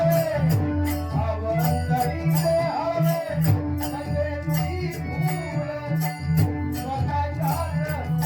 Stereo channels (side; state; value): both; identical; correlation 1.00